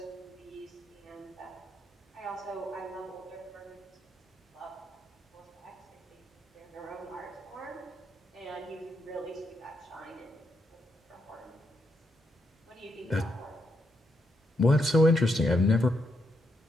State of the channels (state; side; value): normal; both; correlation 0.79